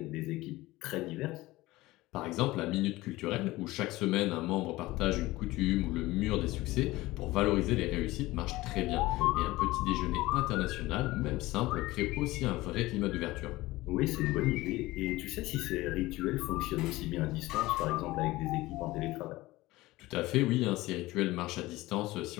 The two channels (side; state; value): right; quieter; 19.0 dB